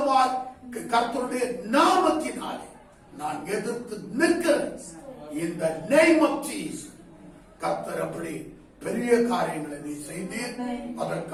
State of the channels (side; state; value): both; identical; correlation 1.00